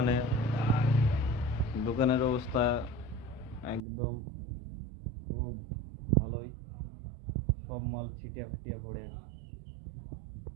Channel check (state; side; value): drops out; left; at 3.8 s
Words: দোকানের অবস্থা একদম খুব ভালোই। সব মাল ছিটিয়ে ফাটিয়ে পড়ে